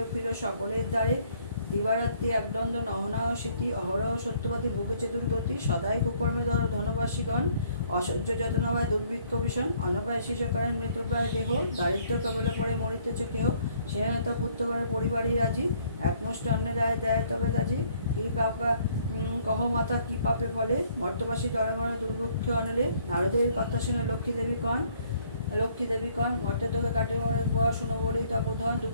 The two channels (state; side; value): inverted; both; correlation -0.63